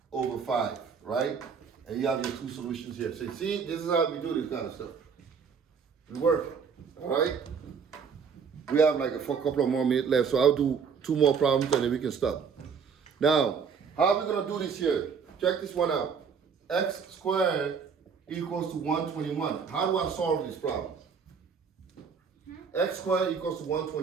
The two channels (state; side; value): quieter; left; 6.1 dB